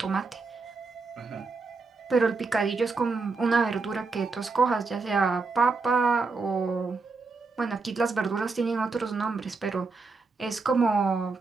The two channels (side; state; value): left; quieter; 4.1 dB